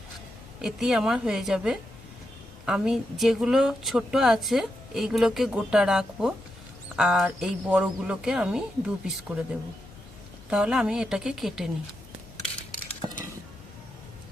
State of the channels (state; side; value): normal; both; correlation 0.85